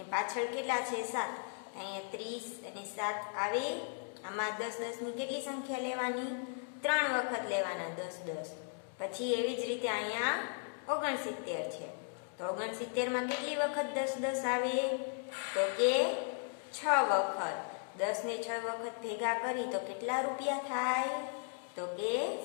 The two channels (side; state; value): right; silent; 53 dB below the other